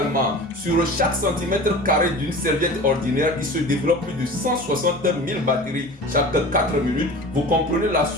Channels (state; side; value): normal; both; correlation 0.37